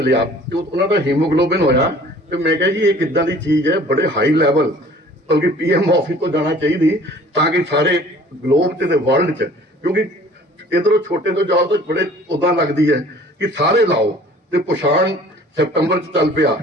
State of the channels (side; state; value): both; normal; correlation 0.50